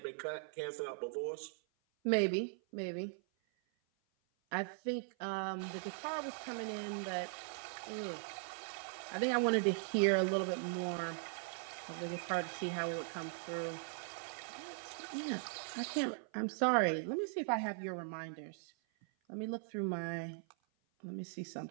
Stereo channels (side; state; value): left; silent; 51 dB below the other